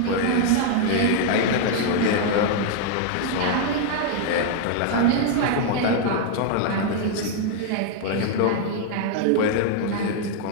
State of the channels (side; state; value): both; different; correlation 0.00